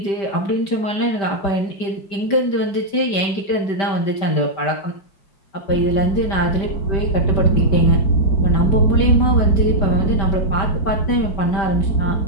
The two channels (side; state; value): right; late; 5.1 ms